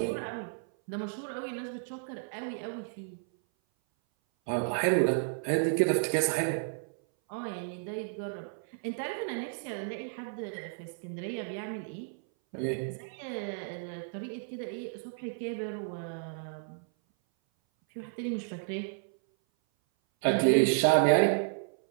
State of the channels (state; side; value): silent; left; 56 dB below the other